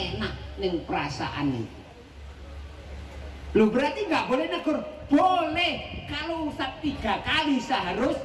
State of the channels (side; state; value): both; identical; correlation 1.00